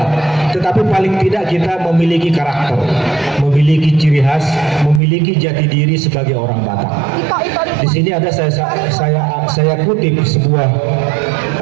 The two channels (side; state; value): left; drops out; at 5.0 s